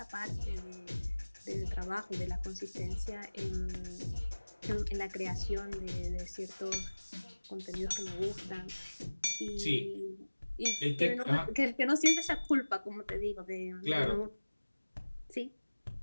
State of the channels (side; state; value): both; inverted; correlation -1.00